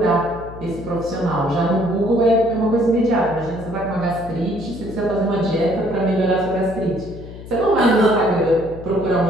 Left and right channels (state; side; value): noise; left; hum, 14 dB below the sound